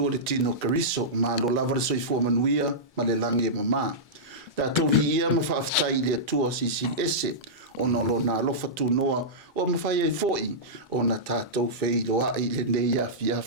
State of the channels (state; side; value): normal; both; correlation -0.14